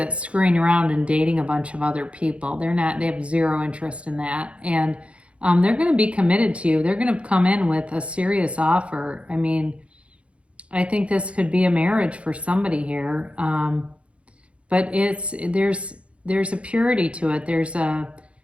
screwing around and dating a bunch of other people. They're not, they have zero interest in that. And they're going to be committed to you. They're going to come in with a serious offer. I mean, I think this could be a marriage for somebody here. But there's a purity to it. There's a,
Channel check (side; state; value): left; late; 0.061 ms